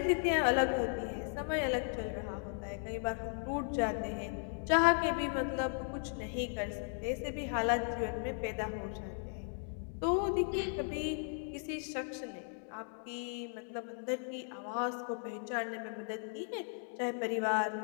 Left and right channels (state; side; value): silent; right; 53 dB below the other